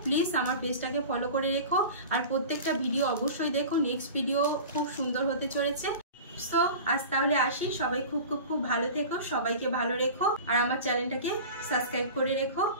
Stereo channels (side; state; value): both; inverted; correlation -0.35